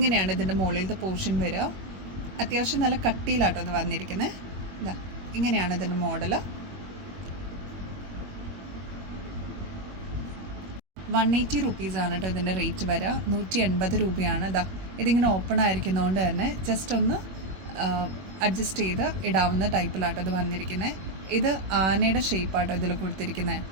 ഇതിന്റെ മുകളിലത്തെ പോർഷൻ വരിക. അത്യാവശ്യം നല്ല കട്ടിയിലാട്ടോ അത് വന്നിരിക്കുന്നത്. ഇതാ ഇങ്ങനെയാണ് ഇതിന്റെ മോഡല്. 180 റുപ്പീസാണ് കേട്ടോ ഇതിൻ്റെ റേറ്റ് വരിക. 180 രൂപയാണ്. ഇതാ ഇതിങ്ങനെ ഓപ്പൺ ആയിരിക്കുന്നതുകൊണ്ട് തന്നെ ജസ്റ്റ് ഒന്ന് അഡ്ജസ്റ്റ് ചെയ്ത് ഇടാവുന്ന ടൈപ്പിലാട്ടോ ഇത് വന്നിരിക്കുന്നത്. ഇത് ആനയുടെ ഷേപ്പാട്ടോ ഇതിൽ കൊടുത്തിരിക്കുന്നത്.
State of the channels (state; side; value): late; left; 21 ms